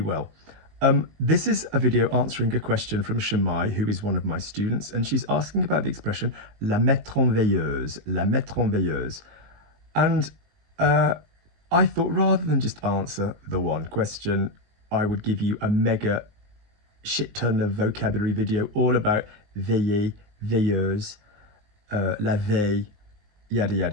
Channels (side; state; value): left; late; 19 ms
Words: well. This is a video answering a question from Shamai, who is one of my students, and she's asking about the expression la mettre en veilleuse, la mettre en veilleuse. And I thought rather than just answer the one question, I would give you a mega shit ton of vocabulary video all about veiller, veilleuse, la veille, yada